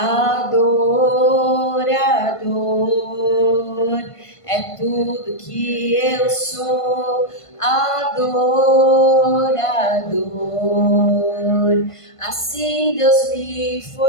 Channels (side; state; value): right; late; 1.5 ms